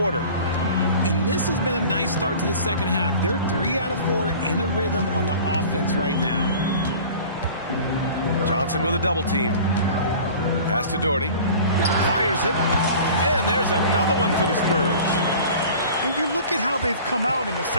And this has been a nice start to the second half. They're 3 out of 4 in a rhythm on the offense right now. Johnson with a double team. Pass to Doherty. Fires it. And there's another one for the Spurs. And you look at how they've come out in the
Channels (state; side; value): inverted; both; correlation -0.42